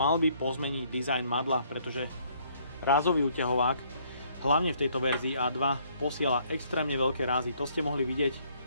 by pozmeniť dizajn madla, pretože rázový úťahovák hlavne v tejto verzii A2 posiela extrémne veľké rázy. To ste mohli vidieť,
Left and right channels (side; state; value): both; inverted; correlation -0.65